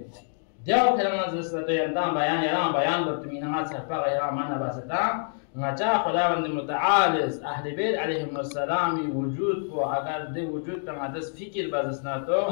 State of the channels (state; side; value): silent; right; digital silence